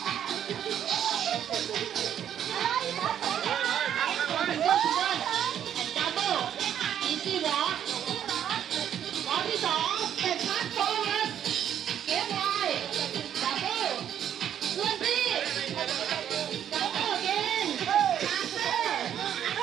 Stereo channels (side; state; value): left; quieter; 9.8 dB